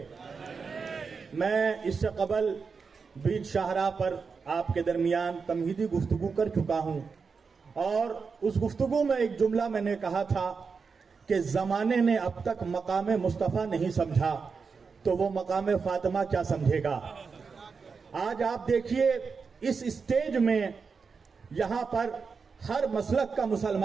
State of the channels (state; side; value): quieter; left; 5.2 dB